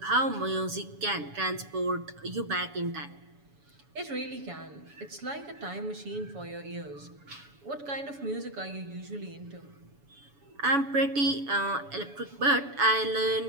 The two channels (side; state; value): left; late; 7.1 ms